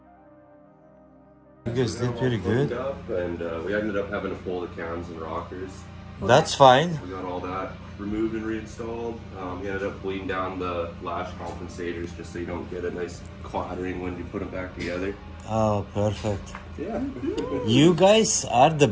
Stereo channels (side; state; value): both; identical; correlation 1.00